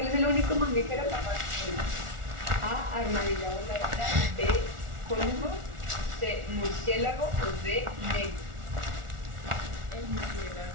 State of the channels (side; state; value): left; late; 1.4 ms